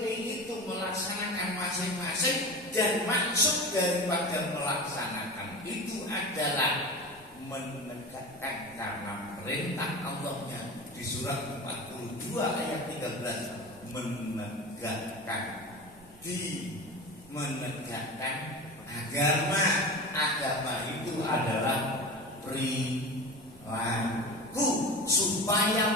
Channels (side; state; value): both; normal; correlation 0.30